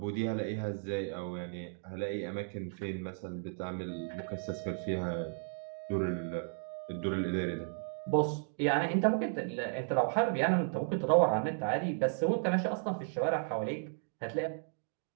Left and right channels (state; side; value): silent; left; digital silence